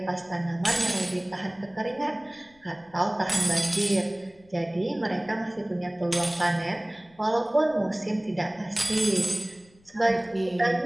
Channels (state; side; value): noise; left; rumble, 29 dB below the sound